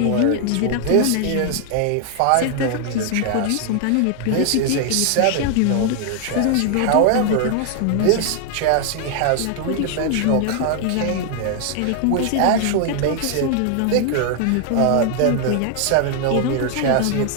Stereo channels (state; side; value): different; both; correlation 0.00